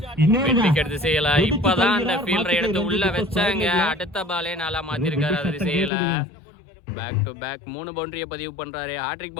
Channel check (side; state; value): right; drops out; at 5.9 s